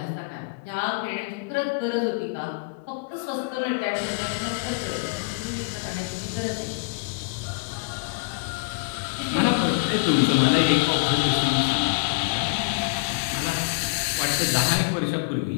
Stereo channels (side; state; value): right; quieter; 30.5 dB